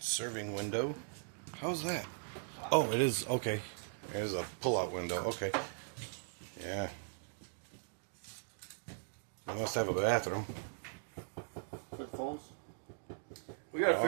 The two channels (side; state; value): left; silent; digital silence